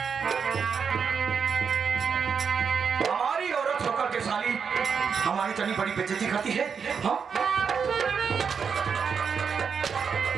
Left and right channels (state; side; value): quieter; left; 6.3 dB